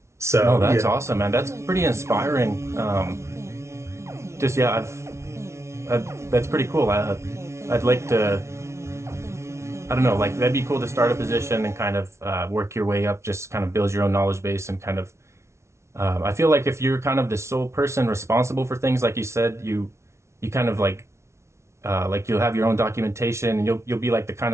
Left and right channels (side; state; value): left; late; 0.13 ms